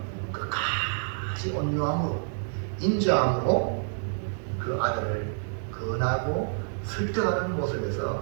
끝까지 온유함으로 인자함으로 그 아들을 건하고 설득하는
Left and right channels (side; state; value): left; silent; digital silence